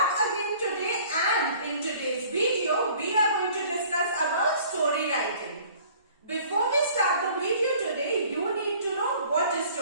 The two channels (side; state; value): both; inverted; correlation -0.52